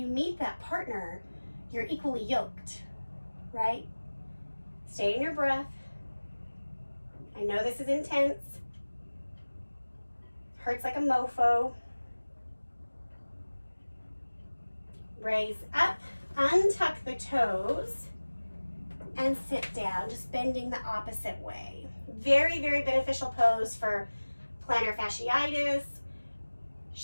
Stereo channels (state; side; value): inverted; both; correlation -1.00